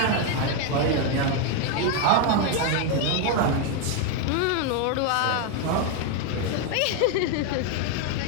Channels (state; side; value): different; both; correlation 0.01